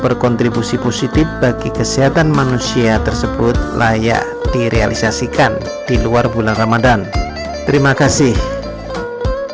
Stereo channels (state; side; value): identical; both; correlation 1.00